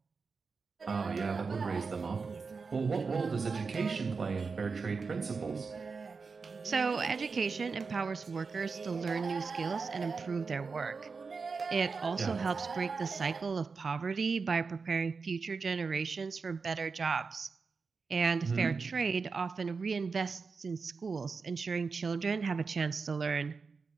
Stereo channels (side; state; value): left; quieter; 4.8 dB